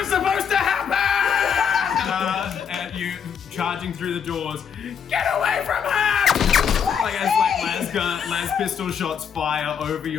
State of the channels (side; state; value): right; quieter; 7.4 dB